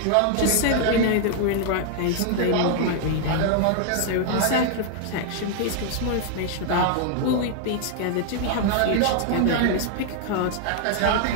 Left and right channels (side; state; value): both; different; correlation 0.00